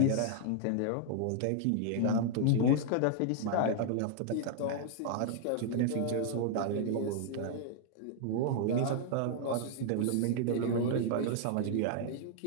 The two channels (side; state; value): both; different; correlation -0.01